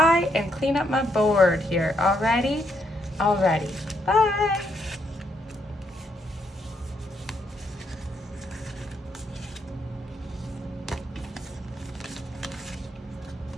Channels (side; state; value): both; normal; correlation 0.76